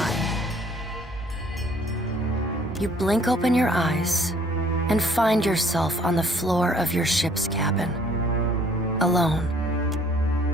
You blink open your eyes and find yourself on the floor of your ship's cabin, alone.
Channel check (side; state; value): both; normal; correlation 0.59